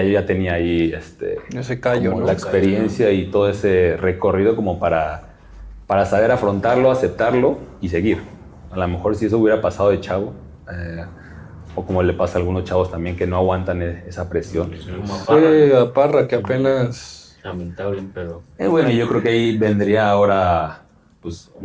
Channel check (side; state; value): both; identical; correlation 1.00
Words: ya tenía ahí Ese callo, como ¿no? la experiencia y todo ese recorrido como para saber afrontarlo, aceptarlo y seguir. A lo mejor si eso hubiera pasado de chavo, o como le pasa a algunos chavos también que no aguantan esa presión. Como a Fue Parra. a Parra que apenas... Lamentable, pero... Bueno, yo creo que ahí vendría ahora pues